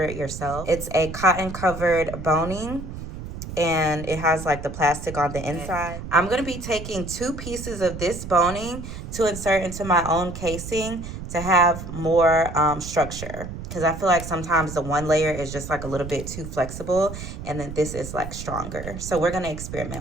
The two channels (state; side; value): noise; right; rumble, 9 dB below the sound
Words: it yourself. It's a cotton covered boning and it has like the plastic on the inside. I'm going to be taking 2 pieces of this boning to insert into my own casing to have more structure. Because I feel like sometimes the one layer is just like a little bit too flexible and then this is like stronger. So we're going to